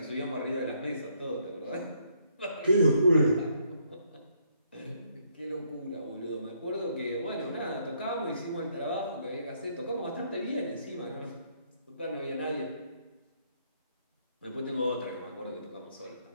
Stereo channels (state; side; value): inverted; both; correlation -0.71